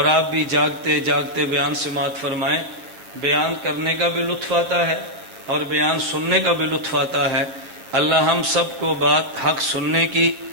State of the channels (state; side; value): late; left; 7.9 ms